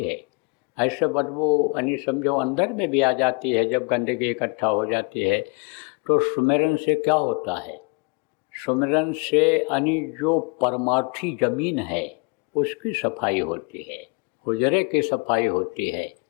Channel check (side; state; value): right; quieter; 32.9 dB